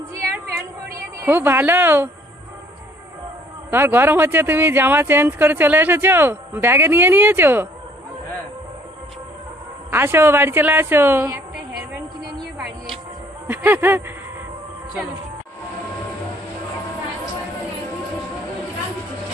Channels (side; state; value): both; normal; correlation 0.60